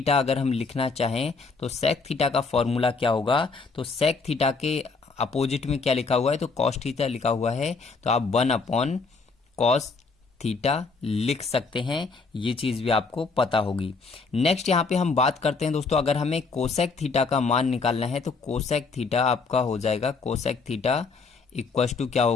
अगर हम लिखना चाहें, तो सेक थीटा का फॉर्मूला क्या होगा, तो सेक थीटा के अपोजिट में क्या लिखा हुआ है, तो कॉस थीटा लिखा हुआ है, तो आप 1 अपॉन कॉस थीटा लिख सकते हैं, ये चीज भी आपको पता होगी। नेक्स्ट यहाँ पे हम बात करते हैं दोस्तों, अगर हमें कोसेक थीटा का मान निकालना है, तो कोसेक थीटा आपका हो जाएगा, कोसेक थीटा इक्वस टू क्या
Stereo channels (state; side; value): quieter; right; 4.4 dB